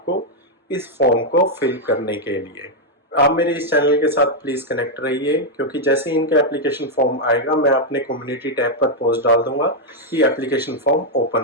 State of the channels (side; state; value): both; normal; correlation -0.01